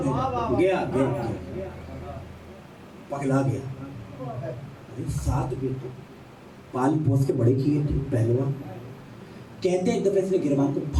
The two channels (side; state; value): both; identical; correlation 1.00